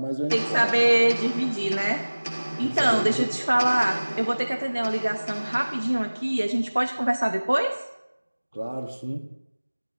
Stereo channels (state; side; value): inverted; both; correlation -1.00